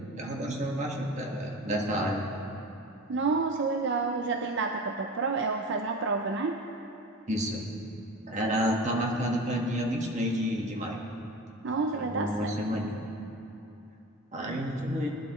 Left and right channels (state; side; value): normal; both; correlation 0.33